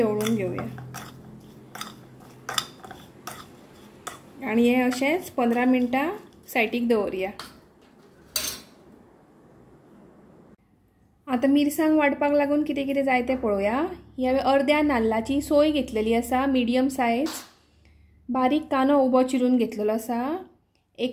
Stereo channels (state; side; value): identical; both; correlation 1.00